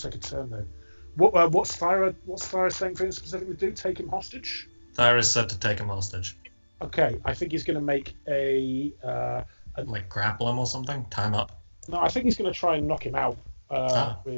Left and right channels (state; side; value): inverted; both; correlation -1.00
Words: a turn though. What's Thyra saying for him specifically to do? Take him hostage? Thyra said to take him hostage. Okay, I think he's gonna make a. Like grapple him or something? Tie him up? No, I think he's gonna try and knock him out